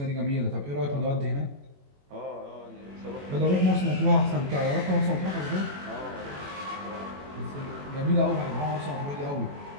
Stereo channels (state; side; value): late; left; 21 ms